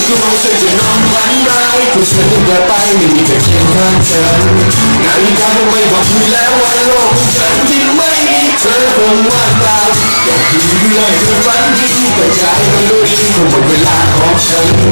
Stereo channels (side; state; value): both; inverted; correlation -1.00